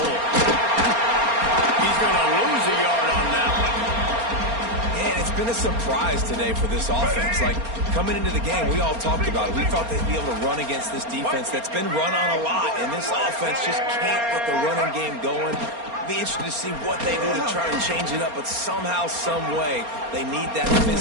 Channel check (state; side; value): late; left; 4.3 ms